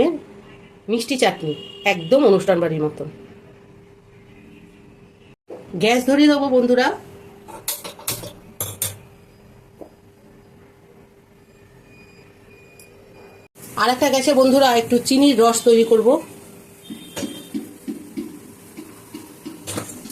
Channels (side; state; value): both; identical; correlation 1.00